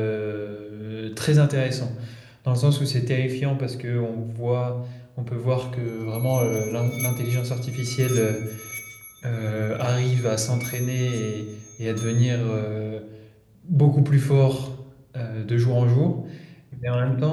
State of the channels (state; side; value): identical; both; correlation 1.00